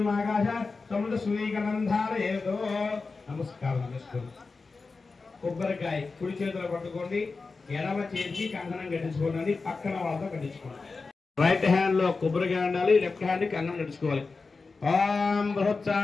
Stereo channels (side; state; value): right; quieter; 4.2 dB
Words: ఆకాశ సముద్ర సూర్యగంధారయేతో. నమస్కారం చేసుకోండి. కొబ్బరికాయ కుడి చేతిలో పట్టుకోండి, ఎడమ చేతికి కంకణం కట్టించుకోండి, పక్కన వాళ్ళతో కట్టించుకోండి. రైట్ హ్యాండ్ లో కొబ్బరికాయ ఉండాలి, లెఫ్ట్ హ్యాండ్ కంకణం కట్టించుకోవాలి. ఓం